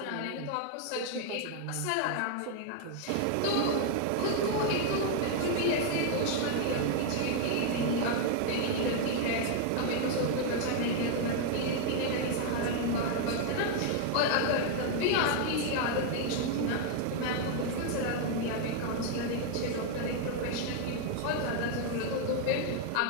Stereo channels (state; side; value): different; both; correlation 0.00